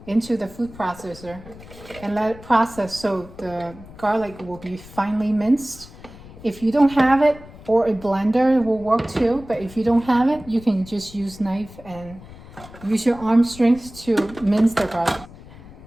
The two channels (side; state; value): left; noise; rumble, 18 dB below the sound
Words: into the food processor and let it process so the garlic will be finely minced. If you don't have it, or a blender will work too, but if you don't have it, you can just use knife and use your arm strength to mince the garlic.